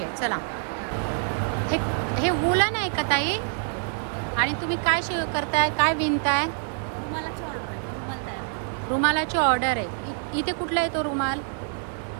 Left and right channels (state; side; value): silent; left; 58 dB below the other